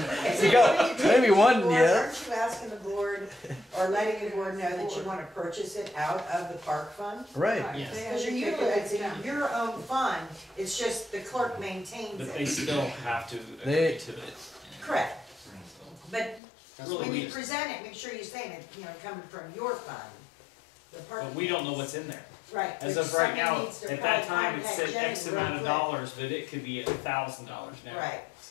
Is You it got- what you maybe take one, to the board? yeah. Aren't you asking the board, or letting the board know that you wanna purchase it out of the park fund? Right. Yes. They Because have you're to take it utilizing down. your own fund, it's just the clerk maintains But they it. still have to They- agree to it. Correct, So, but That's Really, when we you just- present it, make sure you're saying it, you know, coming from your fund. The park. But we don't know what's in there. Right. As but of right somebody now, needs to at that probably time, it contact said Jenny X real amount of quick. dollars, but it could be $1,000 now. Right,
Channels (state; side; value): drops out; right; at 16.4 s